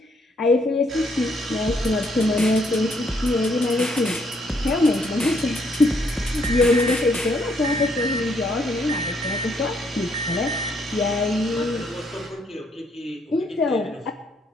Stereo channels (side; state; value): both; normal; correlation 0.70